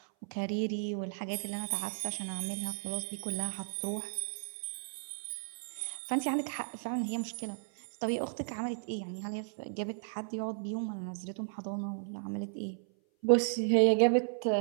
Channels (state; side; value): silent; left; 55 dB below the other